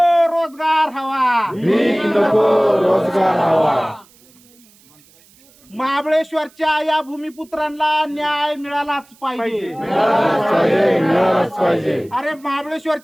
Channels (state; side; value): noise; right; hiss, 29 dB below the sound